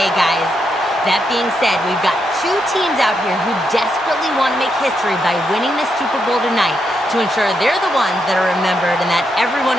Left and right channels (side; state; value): both; normal; correlation 0.81